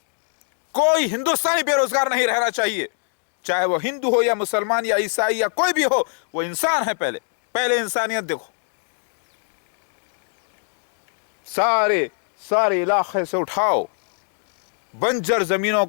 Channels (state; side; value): silent; right; 59 dB below the other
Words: कोई हिंदुस्तानी बेरोजगार नहीं रहना चाहिए, चाहे वो हिंदू हो या मुसलमान या ईसाई या कोई भी हो, वो इंसान है। पहले इंसानियत देखो। सारे इलाके से उठाओ बंजर जमीनों